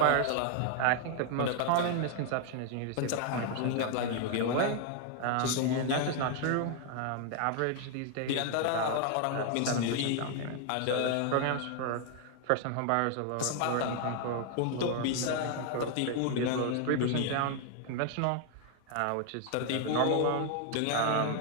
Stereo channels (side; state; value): both; different; correlation 0.00